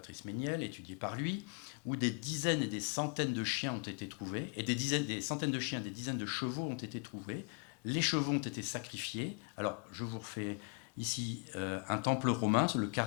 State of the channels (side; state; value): right; quieter; 39.6 dB